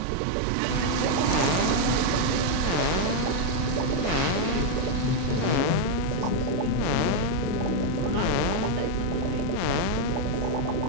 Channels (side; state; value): both; different; correlation 0.01